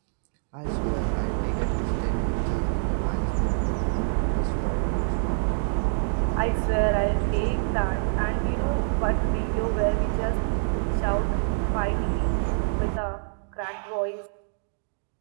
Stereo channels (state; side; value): silent; left; digital silence